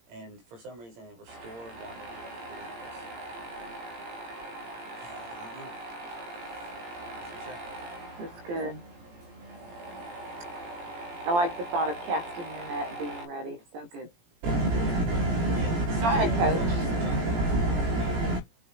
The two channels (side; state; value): left; late; 17 ms